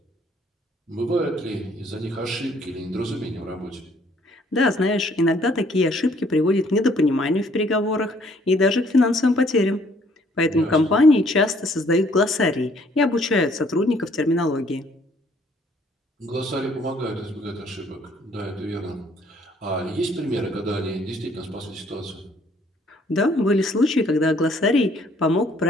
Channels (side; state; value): both; normal; correlation 0.62